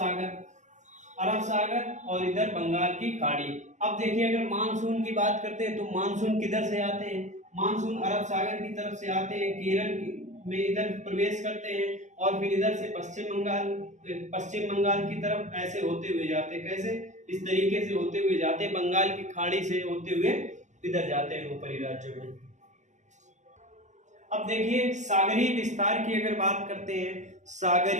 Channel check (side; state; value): left; late; 0.34 ms